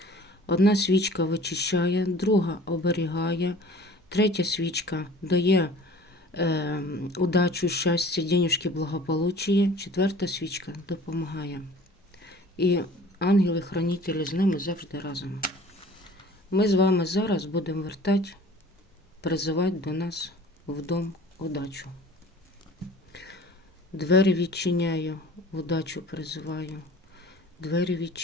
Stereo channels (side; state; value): both; normal; correlation 0.46